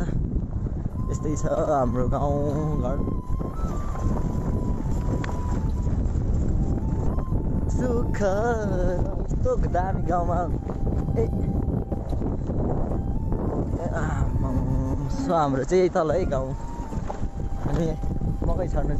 यस्तै छ हाम्रो गाउँ घर सुख यस्तो दामी गाउँमा ए सो हाम्रो चाहिँ यही तल है गाउँ अनि मकै छर्नु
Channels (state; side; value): identical; both; correlation 1.00